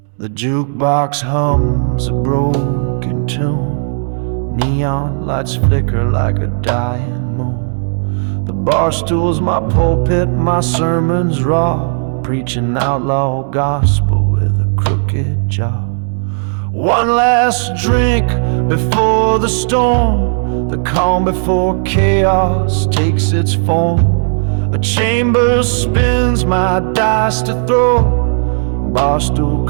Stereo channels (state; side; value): silent; left; digital silence